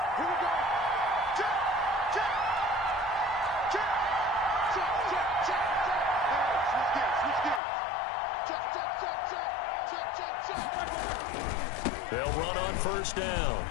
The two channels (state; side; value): drops out; right; at 7.6 s